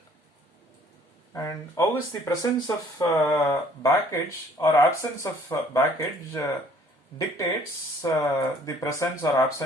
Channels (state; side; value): normal; both; correlation 0.58